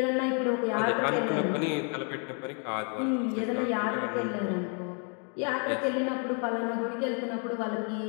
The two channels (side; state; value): right; quieter; 39.5 dB